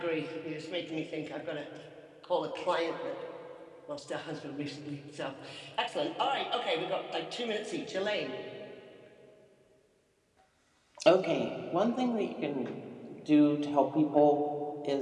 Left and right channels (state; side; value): identical; both; correlation 1.00